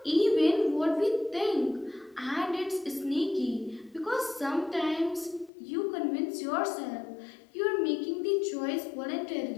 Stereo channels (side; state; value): right; drops out; at 5.5 s